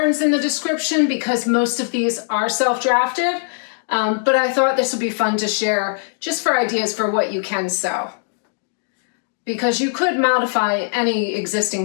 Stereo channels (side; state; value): right; silent; digital silence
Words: in the description because most of these are self-drafted, but I thought this would be fun to share just for ideas for what you can sew, because you could modify any